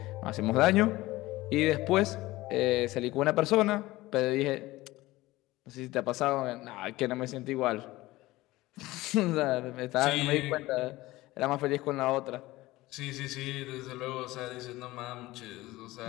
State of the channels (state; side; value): quieter; right; 18.6 dB